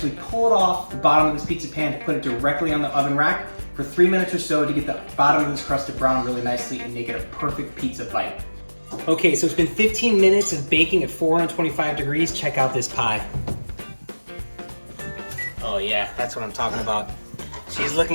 pull it off the bottom of this pizza pan to put it directly on the oven rack for 3 minutes or so to get the bottom of this crust to brown really nicely and make it a perfect pizza bite. Okay, so it's been 15 minutes of baking at 425 degrees. Check out this pie. Oh yeah, that's what I'm talking about. She's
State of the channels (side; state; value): both; inverted; correlation -1.00